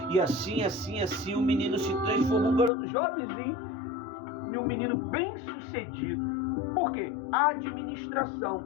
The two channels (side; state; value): right; drops out; at 2.7 s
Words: E assim, o menino se transformou um garoto jovenzinho e um menino bem sucedido. Por quê? A administração.